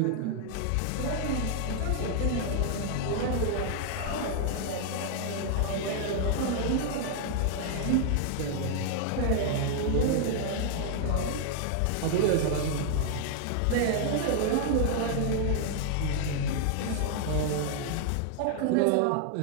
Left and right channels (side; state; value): both; different; correlation 0.00